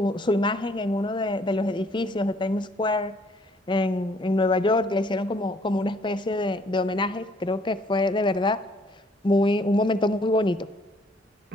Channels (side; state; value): both; normal; correlation 0.63